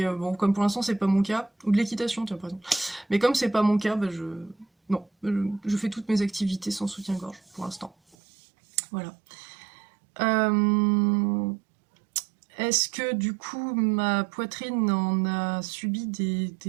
bon, comme pour l'instant c'est pas mon cas, ou de l'équitation, tiens par exemple. Mais comme c'est pas mon cas, bah non, je fais toutes mes activités sans soutien-gorge pour l'instant. Voilà. Est-ce que du coup ma poitrine en a subi des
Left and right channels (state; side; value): drops out; left; at 8.2 s